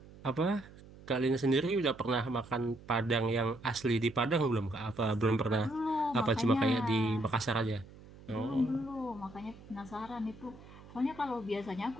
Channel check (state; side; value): noise; right; hum, 20 dB below the sound